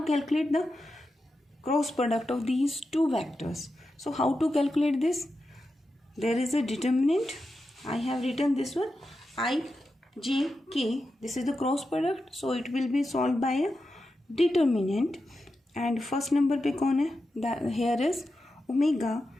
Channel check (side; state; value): both; normal; correlation 0.89